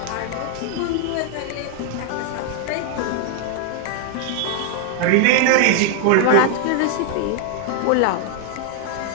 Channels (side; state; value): both; different; correlation 0.00